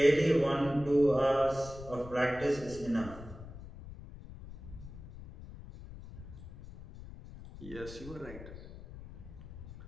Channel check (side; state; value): left; noise; rumble, 14 dB below the sound